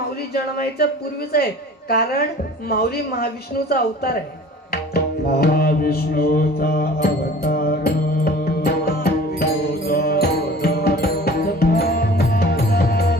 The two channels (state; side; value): normal; both; correlation 0.45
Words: जन्मायच्या पूर्वीच आहे, कारण माऊली महाविष्णूचा अवतार आहे. महाविष्णूचा